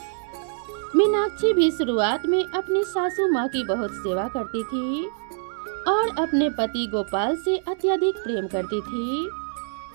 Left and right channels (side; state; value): left; silent; digital silence